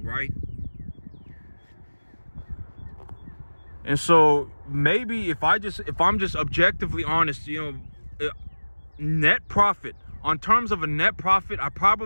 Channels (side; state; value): both; inverted; correlation -1.00